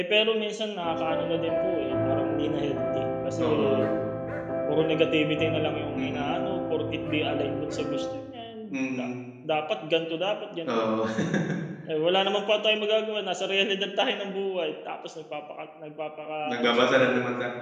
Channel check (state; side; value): identical; both; correlation 1.00